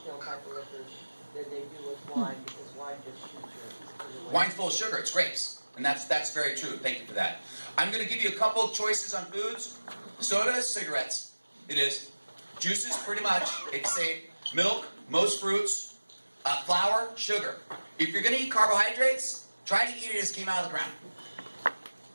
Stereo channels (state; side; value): inverted; both; correlation -1.00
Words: type of liquors than they do with wine, because wine just shoots your. Wine's full of sugar. It's grapes. And that's very true. Thank you for that. I'm going to give you a couple of choices on foods. Soda, cigarettes. It is. Juices, pretty much. It's safe. Milk, most fruits. Flour, sugar. If you're going to eat carbohydrates, try to eat it as it came out of the ground.